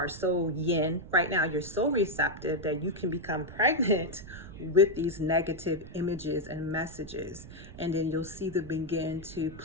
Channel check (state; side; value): noise; right; rumble, 15 dB below the sound